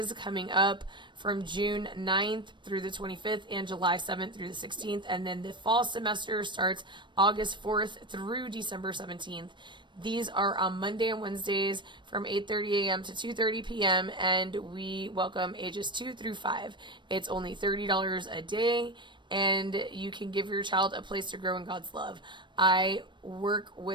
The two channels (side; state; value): left; late; 0.22 ms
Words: coming up from June 9th through the 25th and July 7th through the 16th. And then the fall semester starts August 4th through December 17th. These are on Monday and Wednesdays from 8:30 a.m. to 2:30 p.m. and we welcome ages 2 through 5. It's only $30 a day, and you can give your child a place to grow in God's love. I work